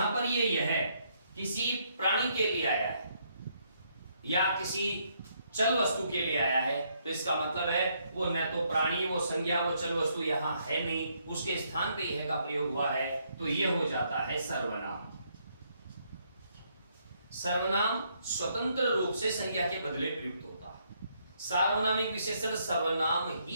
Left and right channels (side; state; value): both; inverted; correlation -0.73